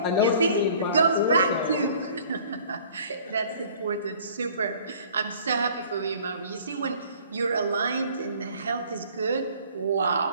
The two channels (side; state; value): both; inverted; correlation -0.53